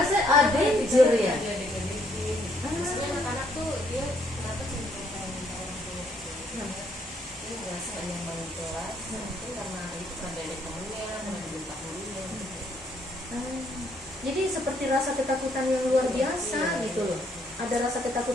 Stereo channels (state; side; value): normal; both; correlation 0.70